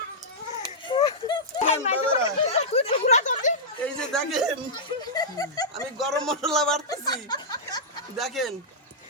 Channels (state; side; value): normal; both; correlation -0.12